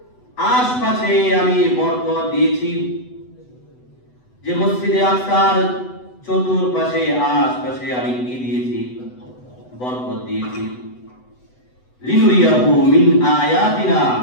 আশপাশে আমি বরকত দিয়েছি। যে মসজিদে আকসার চতুর্পাশে আশপাশে আমি কি দিয়েছি? বরকত দিয়েছি। লিনুরিয়াহু মিন আয়াতিনা,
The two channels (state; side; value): late; right; 8.0 ms